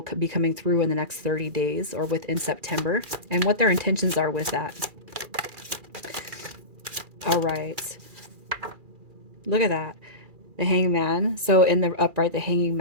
be coming through in the next 30 days or within September, and what their intentions are with that. All right. Look at that. The hangman. So in the upright, the hanging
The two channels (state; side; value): late; left; 2.4 ms